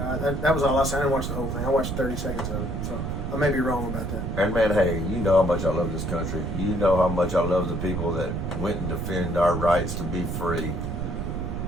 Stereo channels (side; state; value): right; noise; rumble, 3 dB below the sound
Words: That was all I saw. I didn't watch the whole thing. I watched 30 seconds of it, so I may be wrong about that. And man, hey, you know how much I love this country. You know how much I love the people that went and defend our rights to be free.